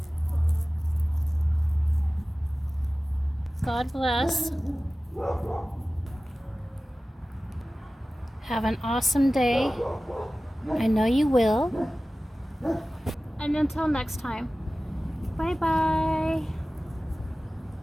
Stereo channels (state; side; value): normal; both; correlation 0.96